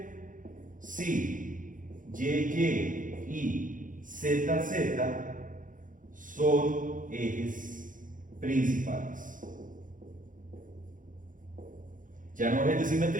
si YY y ZZ son ejes principales. Ya no ejes de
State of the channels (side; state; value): left; late; 0.38 ms